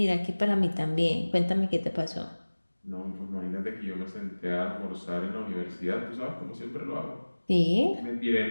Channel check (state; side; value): inverted; both; correlation -1.00